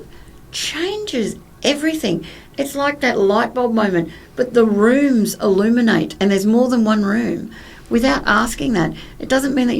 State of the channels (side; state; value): both; identical; correlation 1.00